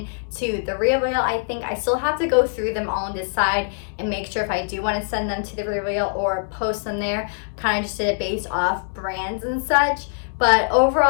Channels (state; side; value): silent; right; digital silence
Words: to the Resell. I think I still have to go through them all and decide and make sure if I do want to send them to the Resell or post them there. Kind of just did it based off brands and such. But